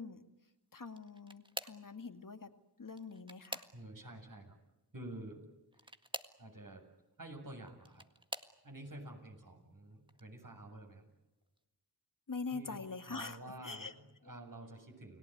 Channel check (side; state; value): both; normal; correlation 0.21